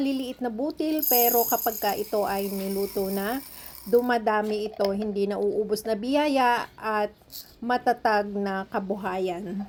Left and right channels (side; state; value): both; identical; correlation 1.00